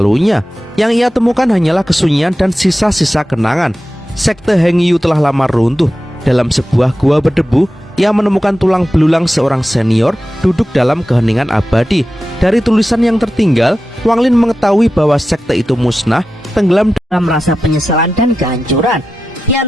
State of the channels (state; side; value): normal; both; correlation 0.93